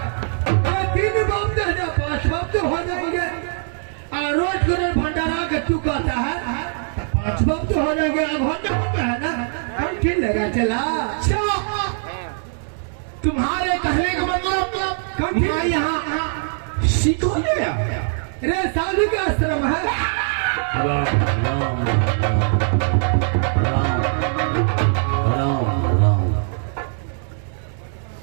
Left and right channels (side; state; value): left; silent; 65 dB below the other